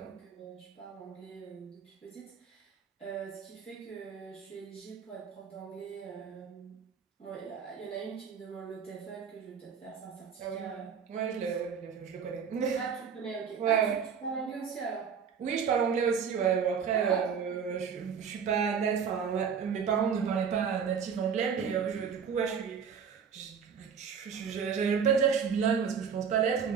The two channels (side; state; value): left; quieter; 6.9 dB